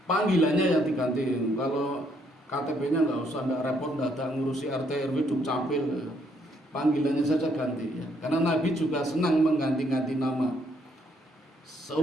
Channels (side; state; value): both; normal; correlation 0.70